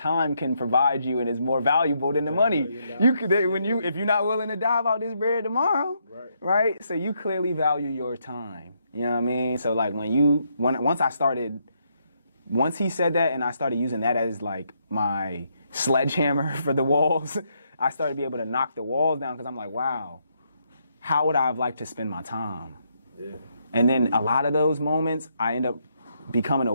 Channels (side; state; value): both; inverted; correlation -0.76